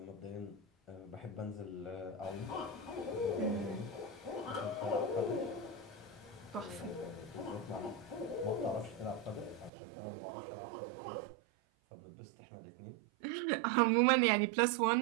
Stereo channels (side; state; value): left; drops out; at 9.7 s